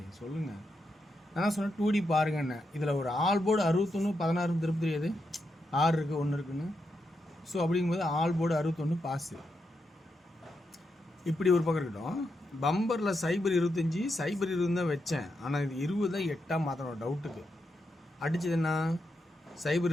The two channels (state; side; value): normal; both; correlation 0.84